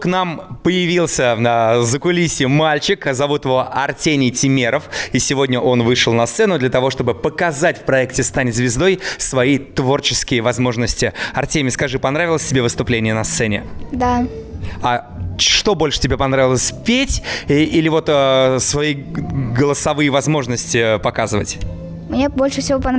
нам появился на закулисье мальчик, зовут его Артемий Тюмеров, и сегодня он вышел на сцену для того, чтобы показать в проекте «Стань звездой» свои творческие возможности. Артемий, скажи, понравилось тебе выступление на сцене? Да. А что больше тебе понравилось, петь или вот свои голосовые возможности показывать? Мне больше всего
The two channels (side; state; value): both; identical; correlation 1.00